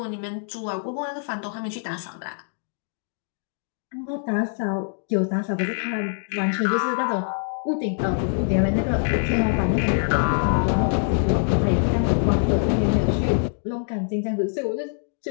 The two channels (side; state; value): right; silent; digital silence